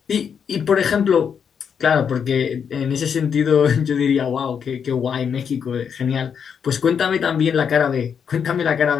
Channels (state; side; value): quieter; right; 7.2 dB